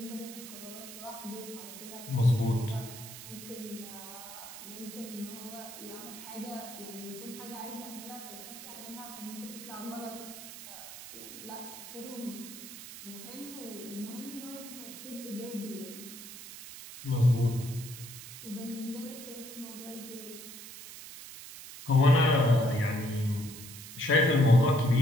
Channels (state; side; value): noise; right; hiss, 12 dB below the sound